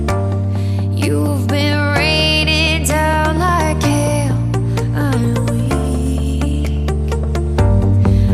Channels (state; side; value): identical; both; correlation 1.00